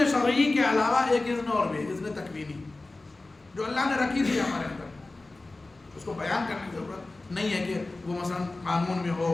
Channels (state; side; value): quieter; right; 3.1 dB